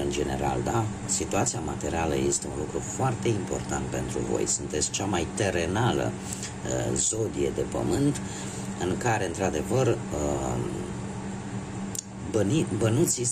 general, da? Situația materială este un lucru foarte important pentru voi. Sunteți cea mai terenală zodie de pământ, în care, într-adevăr, bănuții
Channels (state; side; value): identical; both; correlation 1.00